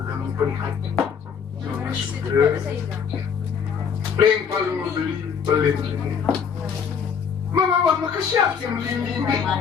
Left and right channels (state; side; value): quieter; right; 6.8 dB